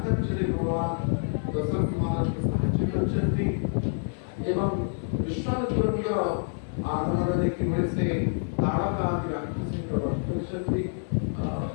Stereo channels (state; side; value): silent; right; 57 dB below the other